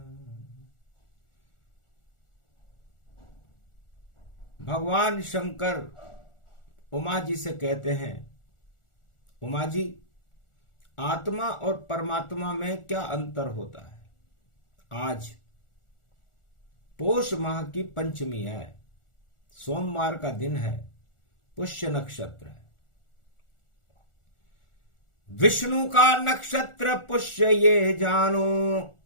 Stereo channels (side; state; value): right; late; 1.4 ms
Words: भगवान शंकर उमा जी से कहते हैं, उमा जी, आत्मा और परमात्मा में क्या अंतर होता है? आज पोष माह की पंचमी है, सोमवार का दिन है, पुष्य नक्षत्र है। विष्णु का नक्षत्र पुष्य ये जानो,